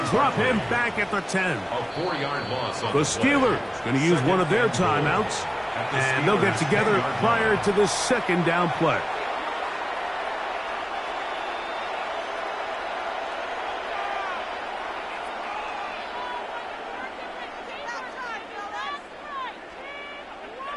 drop him back at the 10. A 4-yard loss. The Steelers going to use one of their timeouts, and they'll get together prior to the second down play.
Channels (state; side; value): identical; both; correlation 1.00